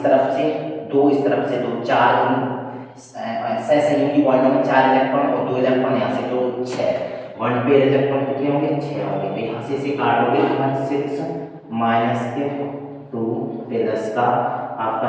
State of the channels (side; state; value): both; identical; correlation 1.00